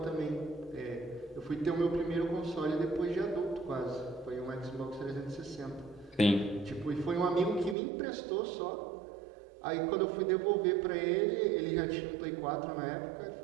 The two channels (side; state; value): left; drops out; at 7.8 s